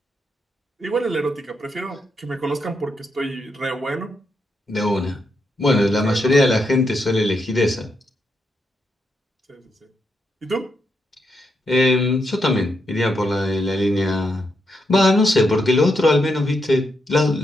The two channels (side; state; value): both; normal; correlation 0.82